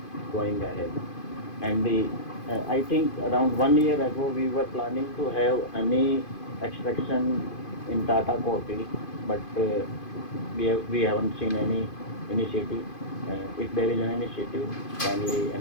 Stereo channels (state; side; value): late; right; 2.5 ms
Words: going ahead? And I think around 1 year ago, we were planning to have honey extraction in Tata Coffee, but we haven't seen any initiative. If there is an initiative, kindly